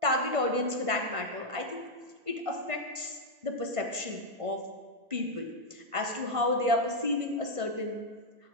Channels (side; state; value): left; late; 1.5 ms